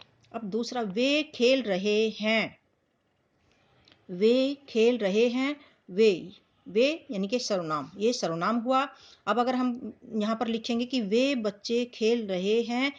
अब दूसरा, वे खेल रहे हैं। वे खेल रहे हैं, वे यानी कि सर्वनाम, ये सर्वनाम हुआ। अब अगर हम यहाँ पर लिखेंगे कि वे बच्चे खेल रहे हैं,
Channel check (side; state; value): both; identical; correlation 1.00